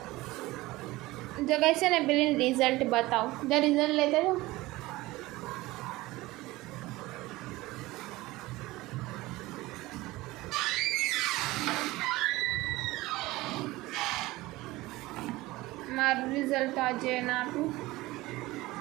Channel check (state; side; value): quieter; left; 19.4 dB